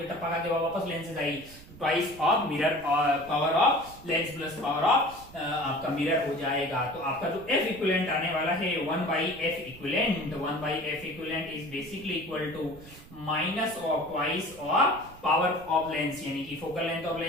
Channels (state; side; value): noise; right; rumble, 19 dB below the sound